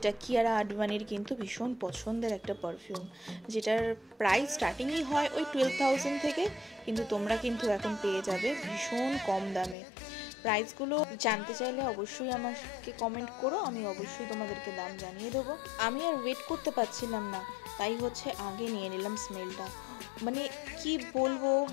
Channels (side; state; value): right; drops out; at 9.8 s